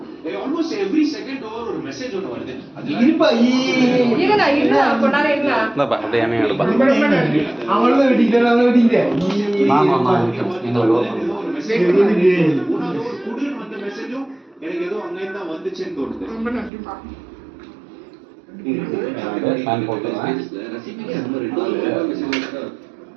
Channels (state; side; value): drops out; left; at 16.7 s